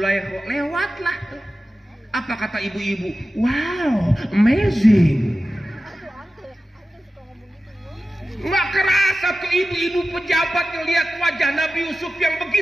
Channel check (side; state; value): both; normal; correlation 0.94